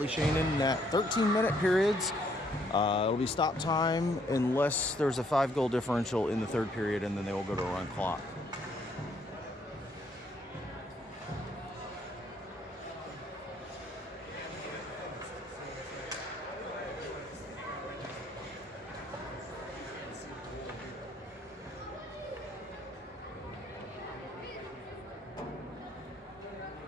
Shane in net. 13-minute periods. It'll be stop time unless there's a 5-goal differential in the third period, and then they will go to a run clock.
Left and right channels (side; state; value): both; normal; correlation 0.68